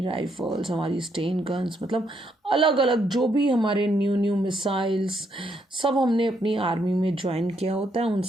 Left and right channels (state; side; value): normal; both; correlation 0.75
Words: राइफल्स, हमारी स्टेन गन्स, मतलब अलग अलग जो भी हमारे न्यू मिसाइल्स सब हमने अपनी आर्मी में ज्वाइन किया होता है, उन